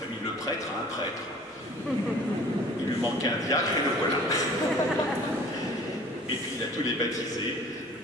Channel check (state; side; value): normal; both; correlation 0.48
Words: Le Prêtre a un prêtre. Il lui manquait un diacre et le voilà. Et puis il a tous les baptisés,